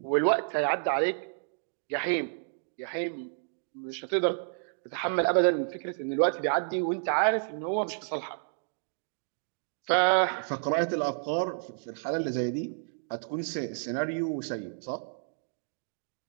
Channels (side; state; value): left; silent; digital silence